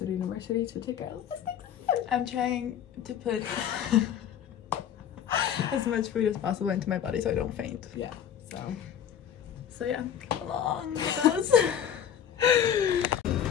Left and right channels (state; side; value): quieter; right; 9.4 dB